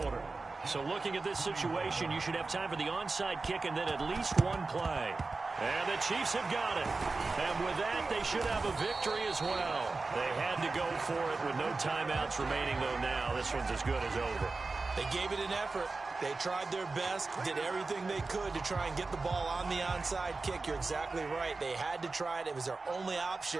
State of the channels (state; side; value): quieter; left; 3.8 dB